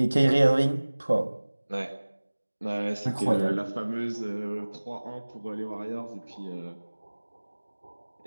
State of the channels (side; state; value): both; inverted; correlation -1.00